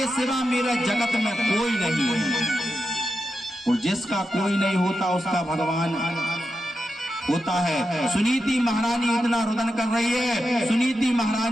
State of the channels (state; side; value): normal; both; correlation 0.88